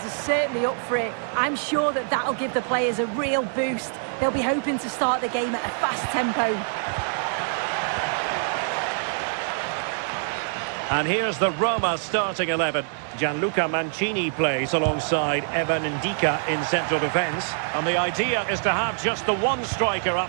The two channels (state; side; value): silent; left; digital silence